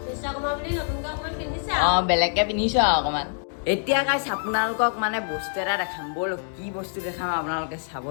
অঁ, বেলেগকৈ পিন্ধিছোঁ আৰু অকণমান। এতিয়া গাইজ আপোনালোকক মানে বস্তু এটা দেখাম। ব'ল, কি বস্তু দেখাম আপোনালোকে চাব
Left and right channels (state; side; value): silent; right; 61 dB below the other